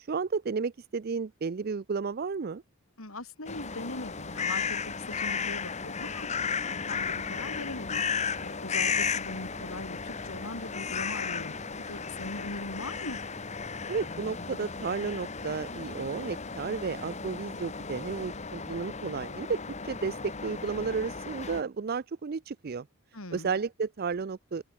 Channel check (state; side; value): normal; both; correlation -0.09